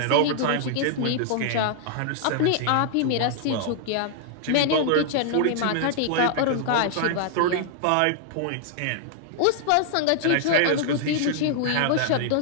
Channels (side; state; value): both; different; correlation -0.01